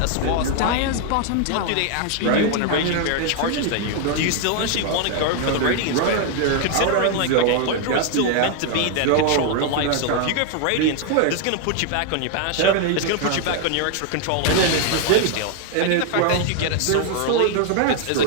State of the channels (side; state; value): both; different; correlation 0.00